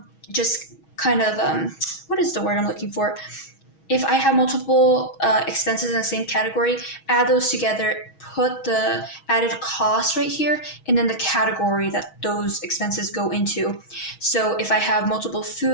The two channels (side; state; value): right; late; 6.3 ms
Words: what is the word I'm looking for? If I have multiple expenses in the same category, add those together, put the added cost right here, and then the category that those expenses go into. So if I have multiple